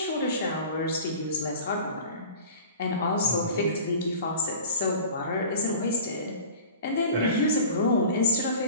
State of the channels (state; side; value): inverted; both; correlation -0.40